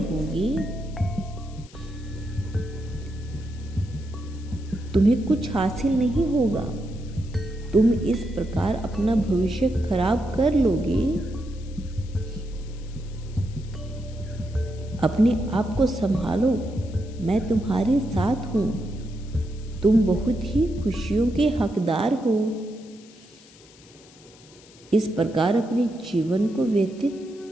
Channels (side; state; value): left; noise; hiss, 24 dB below the sound